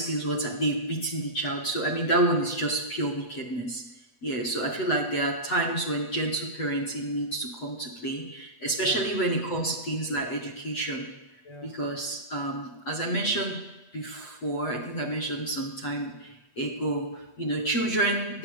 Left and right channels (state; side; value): late; right; 8.2 ms